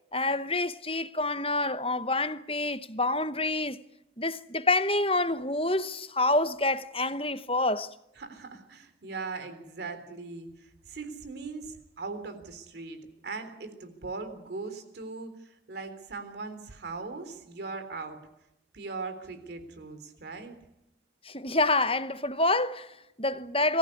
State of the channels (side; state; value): both; normal; correlation -0.11